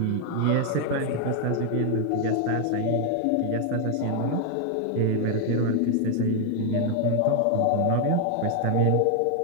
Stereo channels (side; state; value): both; different; correlation 0.00